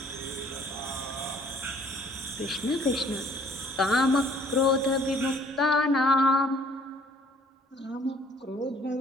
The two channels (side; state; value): both; normal; correlation 0.58